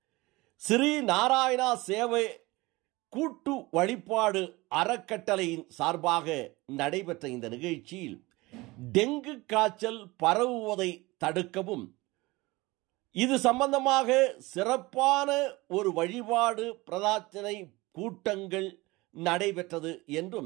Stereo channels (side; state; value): left; quieter; 21.8 dB